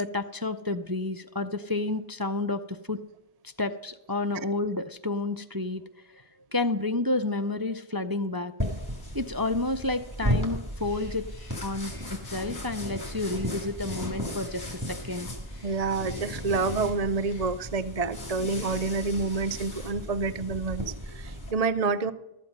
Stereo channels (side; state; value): left; late; 1.0 ms